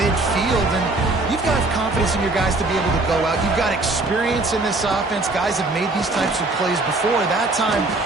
and you've got confidence in your guys to be able to go out. You've got experience in this offense. Guys have made these types of plays before. That time,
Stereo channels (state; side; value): quieter; left; 3.1 dB